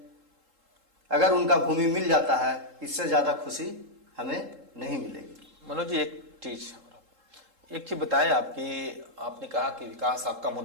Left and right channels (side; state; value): left; late; 3.7 ms